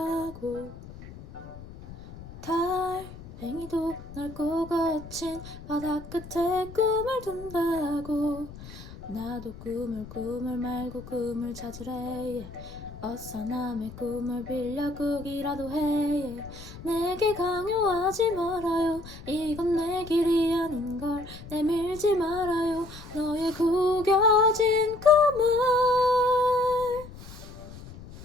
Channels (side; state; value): left; noise; rumble, 15 dB below the sound